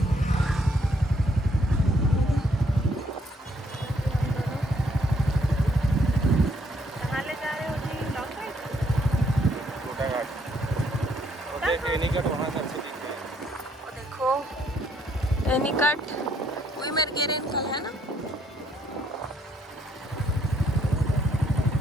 कहाँ ले जा रहे हो जी? Long ride? छोटा घाट वो देख एनीकट वहाँ से अच्छे दिख रहे हैं। वो देखो एनीकट वही मेरे गेरे निकल है ना।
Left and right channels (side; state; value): both; normal; correlation 0.69